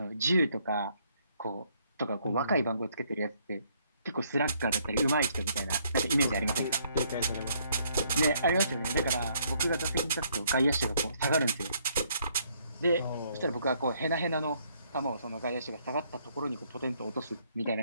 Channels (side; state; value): both; inverted; correlation -0.68